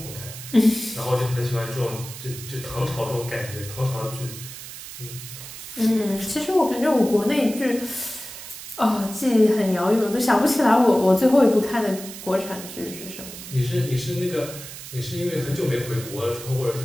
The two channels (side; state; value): right; noise; hiss, 12 dB below the sound